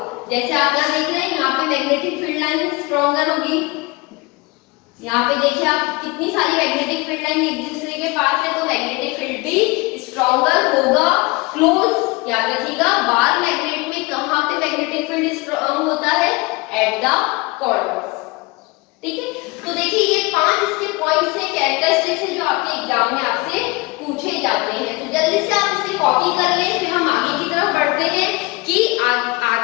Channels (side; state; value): right; quieter; 24.3 dB